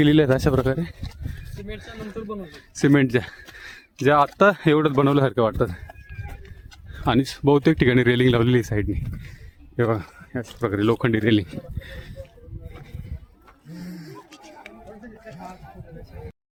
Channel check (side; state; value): both; identical; correlation 1.00